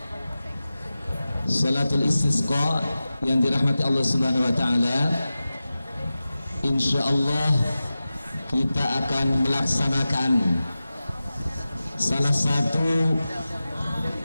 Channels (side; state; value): both; inverted; correlation -0.95